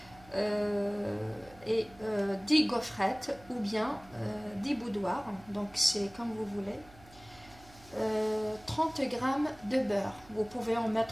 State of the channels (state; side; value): noise; right; hum, 23 dB below the sound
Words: Et 10 gaufrettes ou bien 10 boudoirs, donc c'est comme vous voulez. 30 g de beurre, vous pouvez en